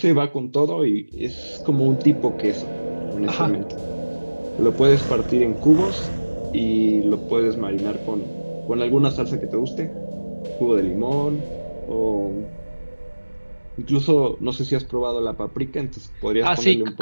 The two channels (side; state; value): both; inverted; correlation -1.00